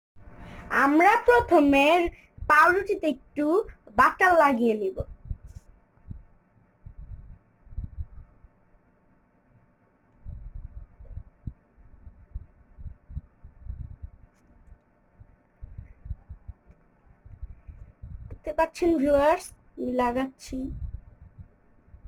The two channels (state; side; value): identical; both; correlation 1.00